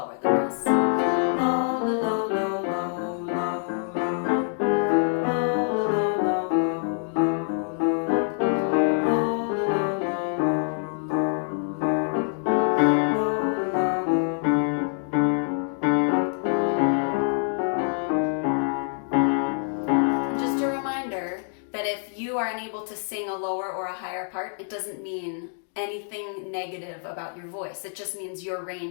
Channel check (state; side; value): silent; right; 61 dB below the other